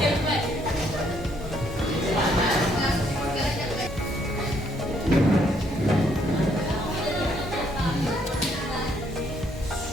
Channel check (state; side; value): normal; both; correlation 0.69